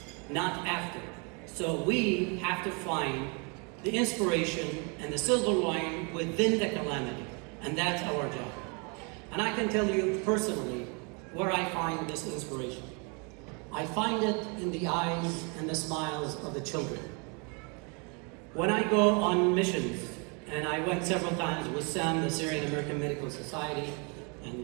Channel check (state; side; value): quieter; left; 33.8 dB